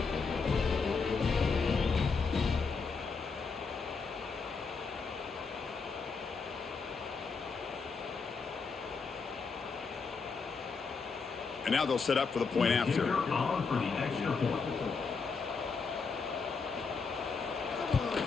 And now they'll set up for the point after. On for the extra point.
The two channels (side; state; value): right; quieter; 5.0 dB